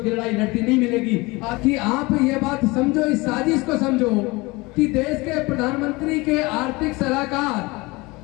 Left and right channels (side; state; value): right; quieter; 23.7 dB